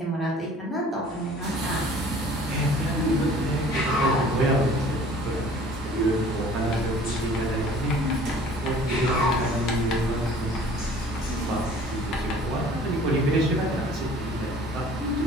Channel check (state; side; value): normal; both; correlation 0.50